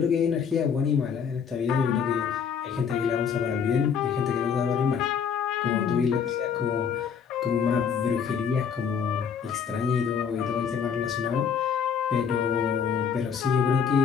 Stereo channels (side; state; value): right; quieter; 7.0 dB